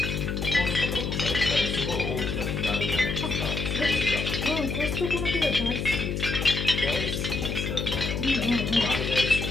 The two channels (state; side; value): noise; left; hum, 2 dB below the sound